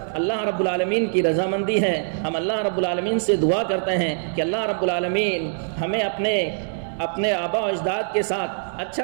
اللہ رب العالمین کی رضامندی ہے۔ ہم اللہ رب العالمین سے دعا کرتے ہیں کہ اللہ رب العالمین ہمیں اپنے آبا و اجداد کے ساتھ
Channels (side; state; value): left; silent; digital silence